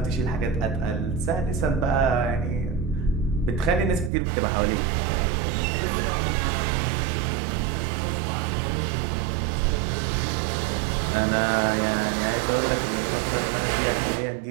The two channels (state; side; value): drops out; left; at 4.1 s